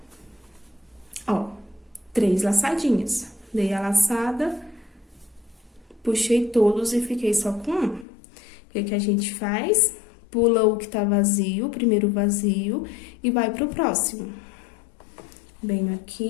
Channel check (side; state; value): right; drops out; at 8.1 s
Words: Ó, 3 laçadinhas. Dei a laçada, puxei todos e fiquei só com um. O que que a gente faz? Pula o que tá vazio, o primeiro vazio, e vai pro próximo. Venho